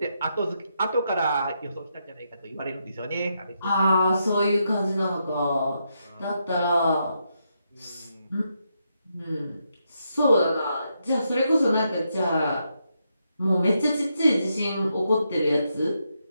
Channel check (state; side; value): inverted; both; correlation -0.81